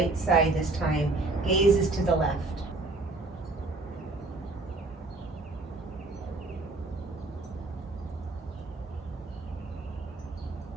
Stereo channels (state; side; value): quieter; left; 3.2 dB